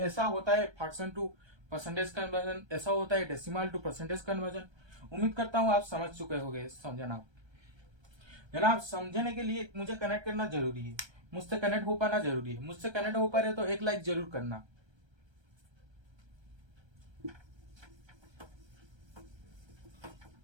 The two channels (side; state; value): left; late; 1.3 ms